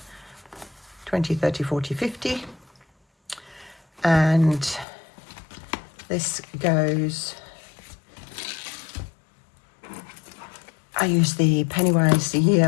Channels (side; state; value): right; drops out; at 4.9 s